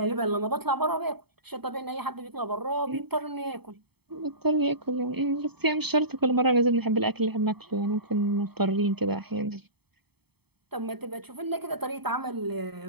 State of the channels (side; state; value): left; late; 0.97 ms